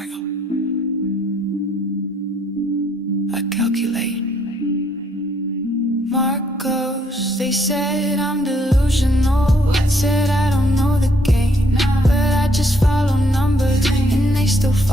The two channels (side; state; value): both; normal; correlation 0.68